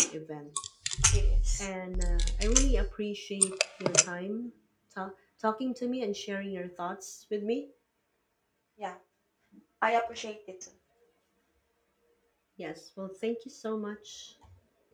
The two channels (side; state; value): both; identical; correlation 1.00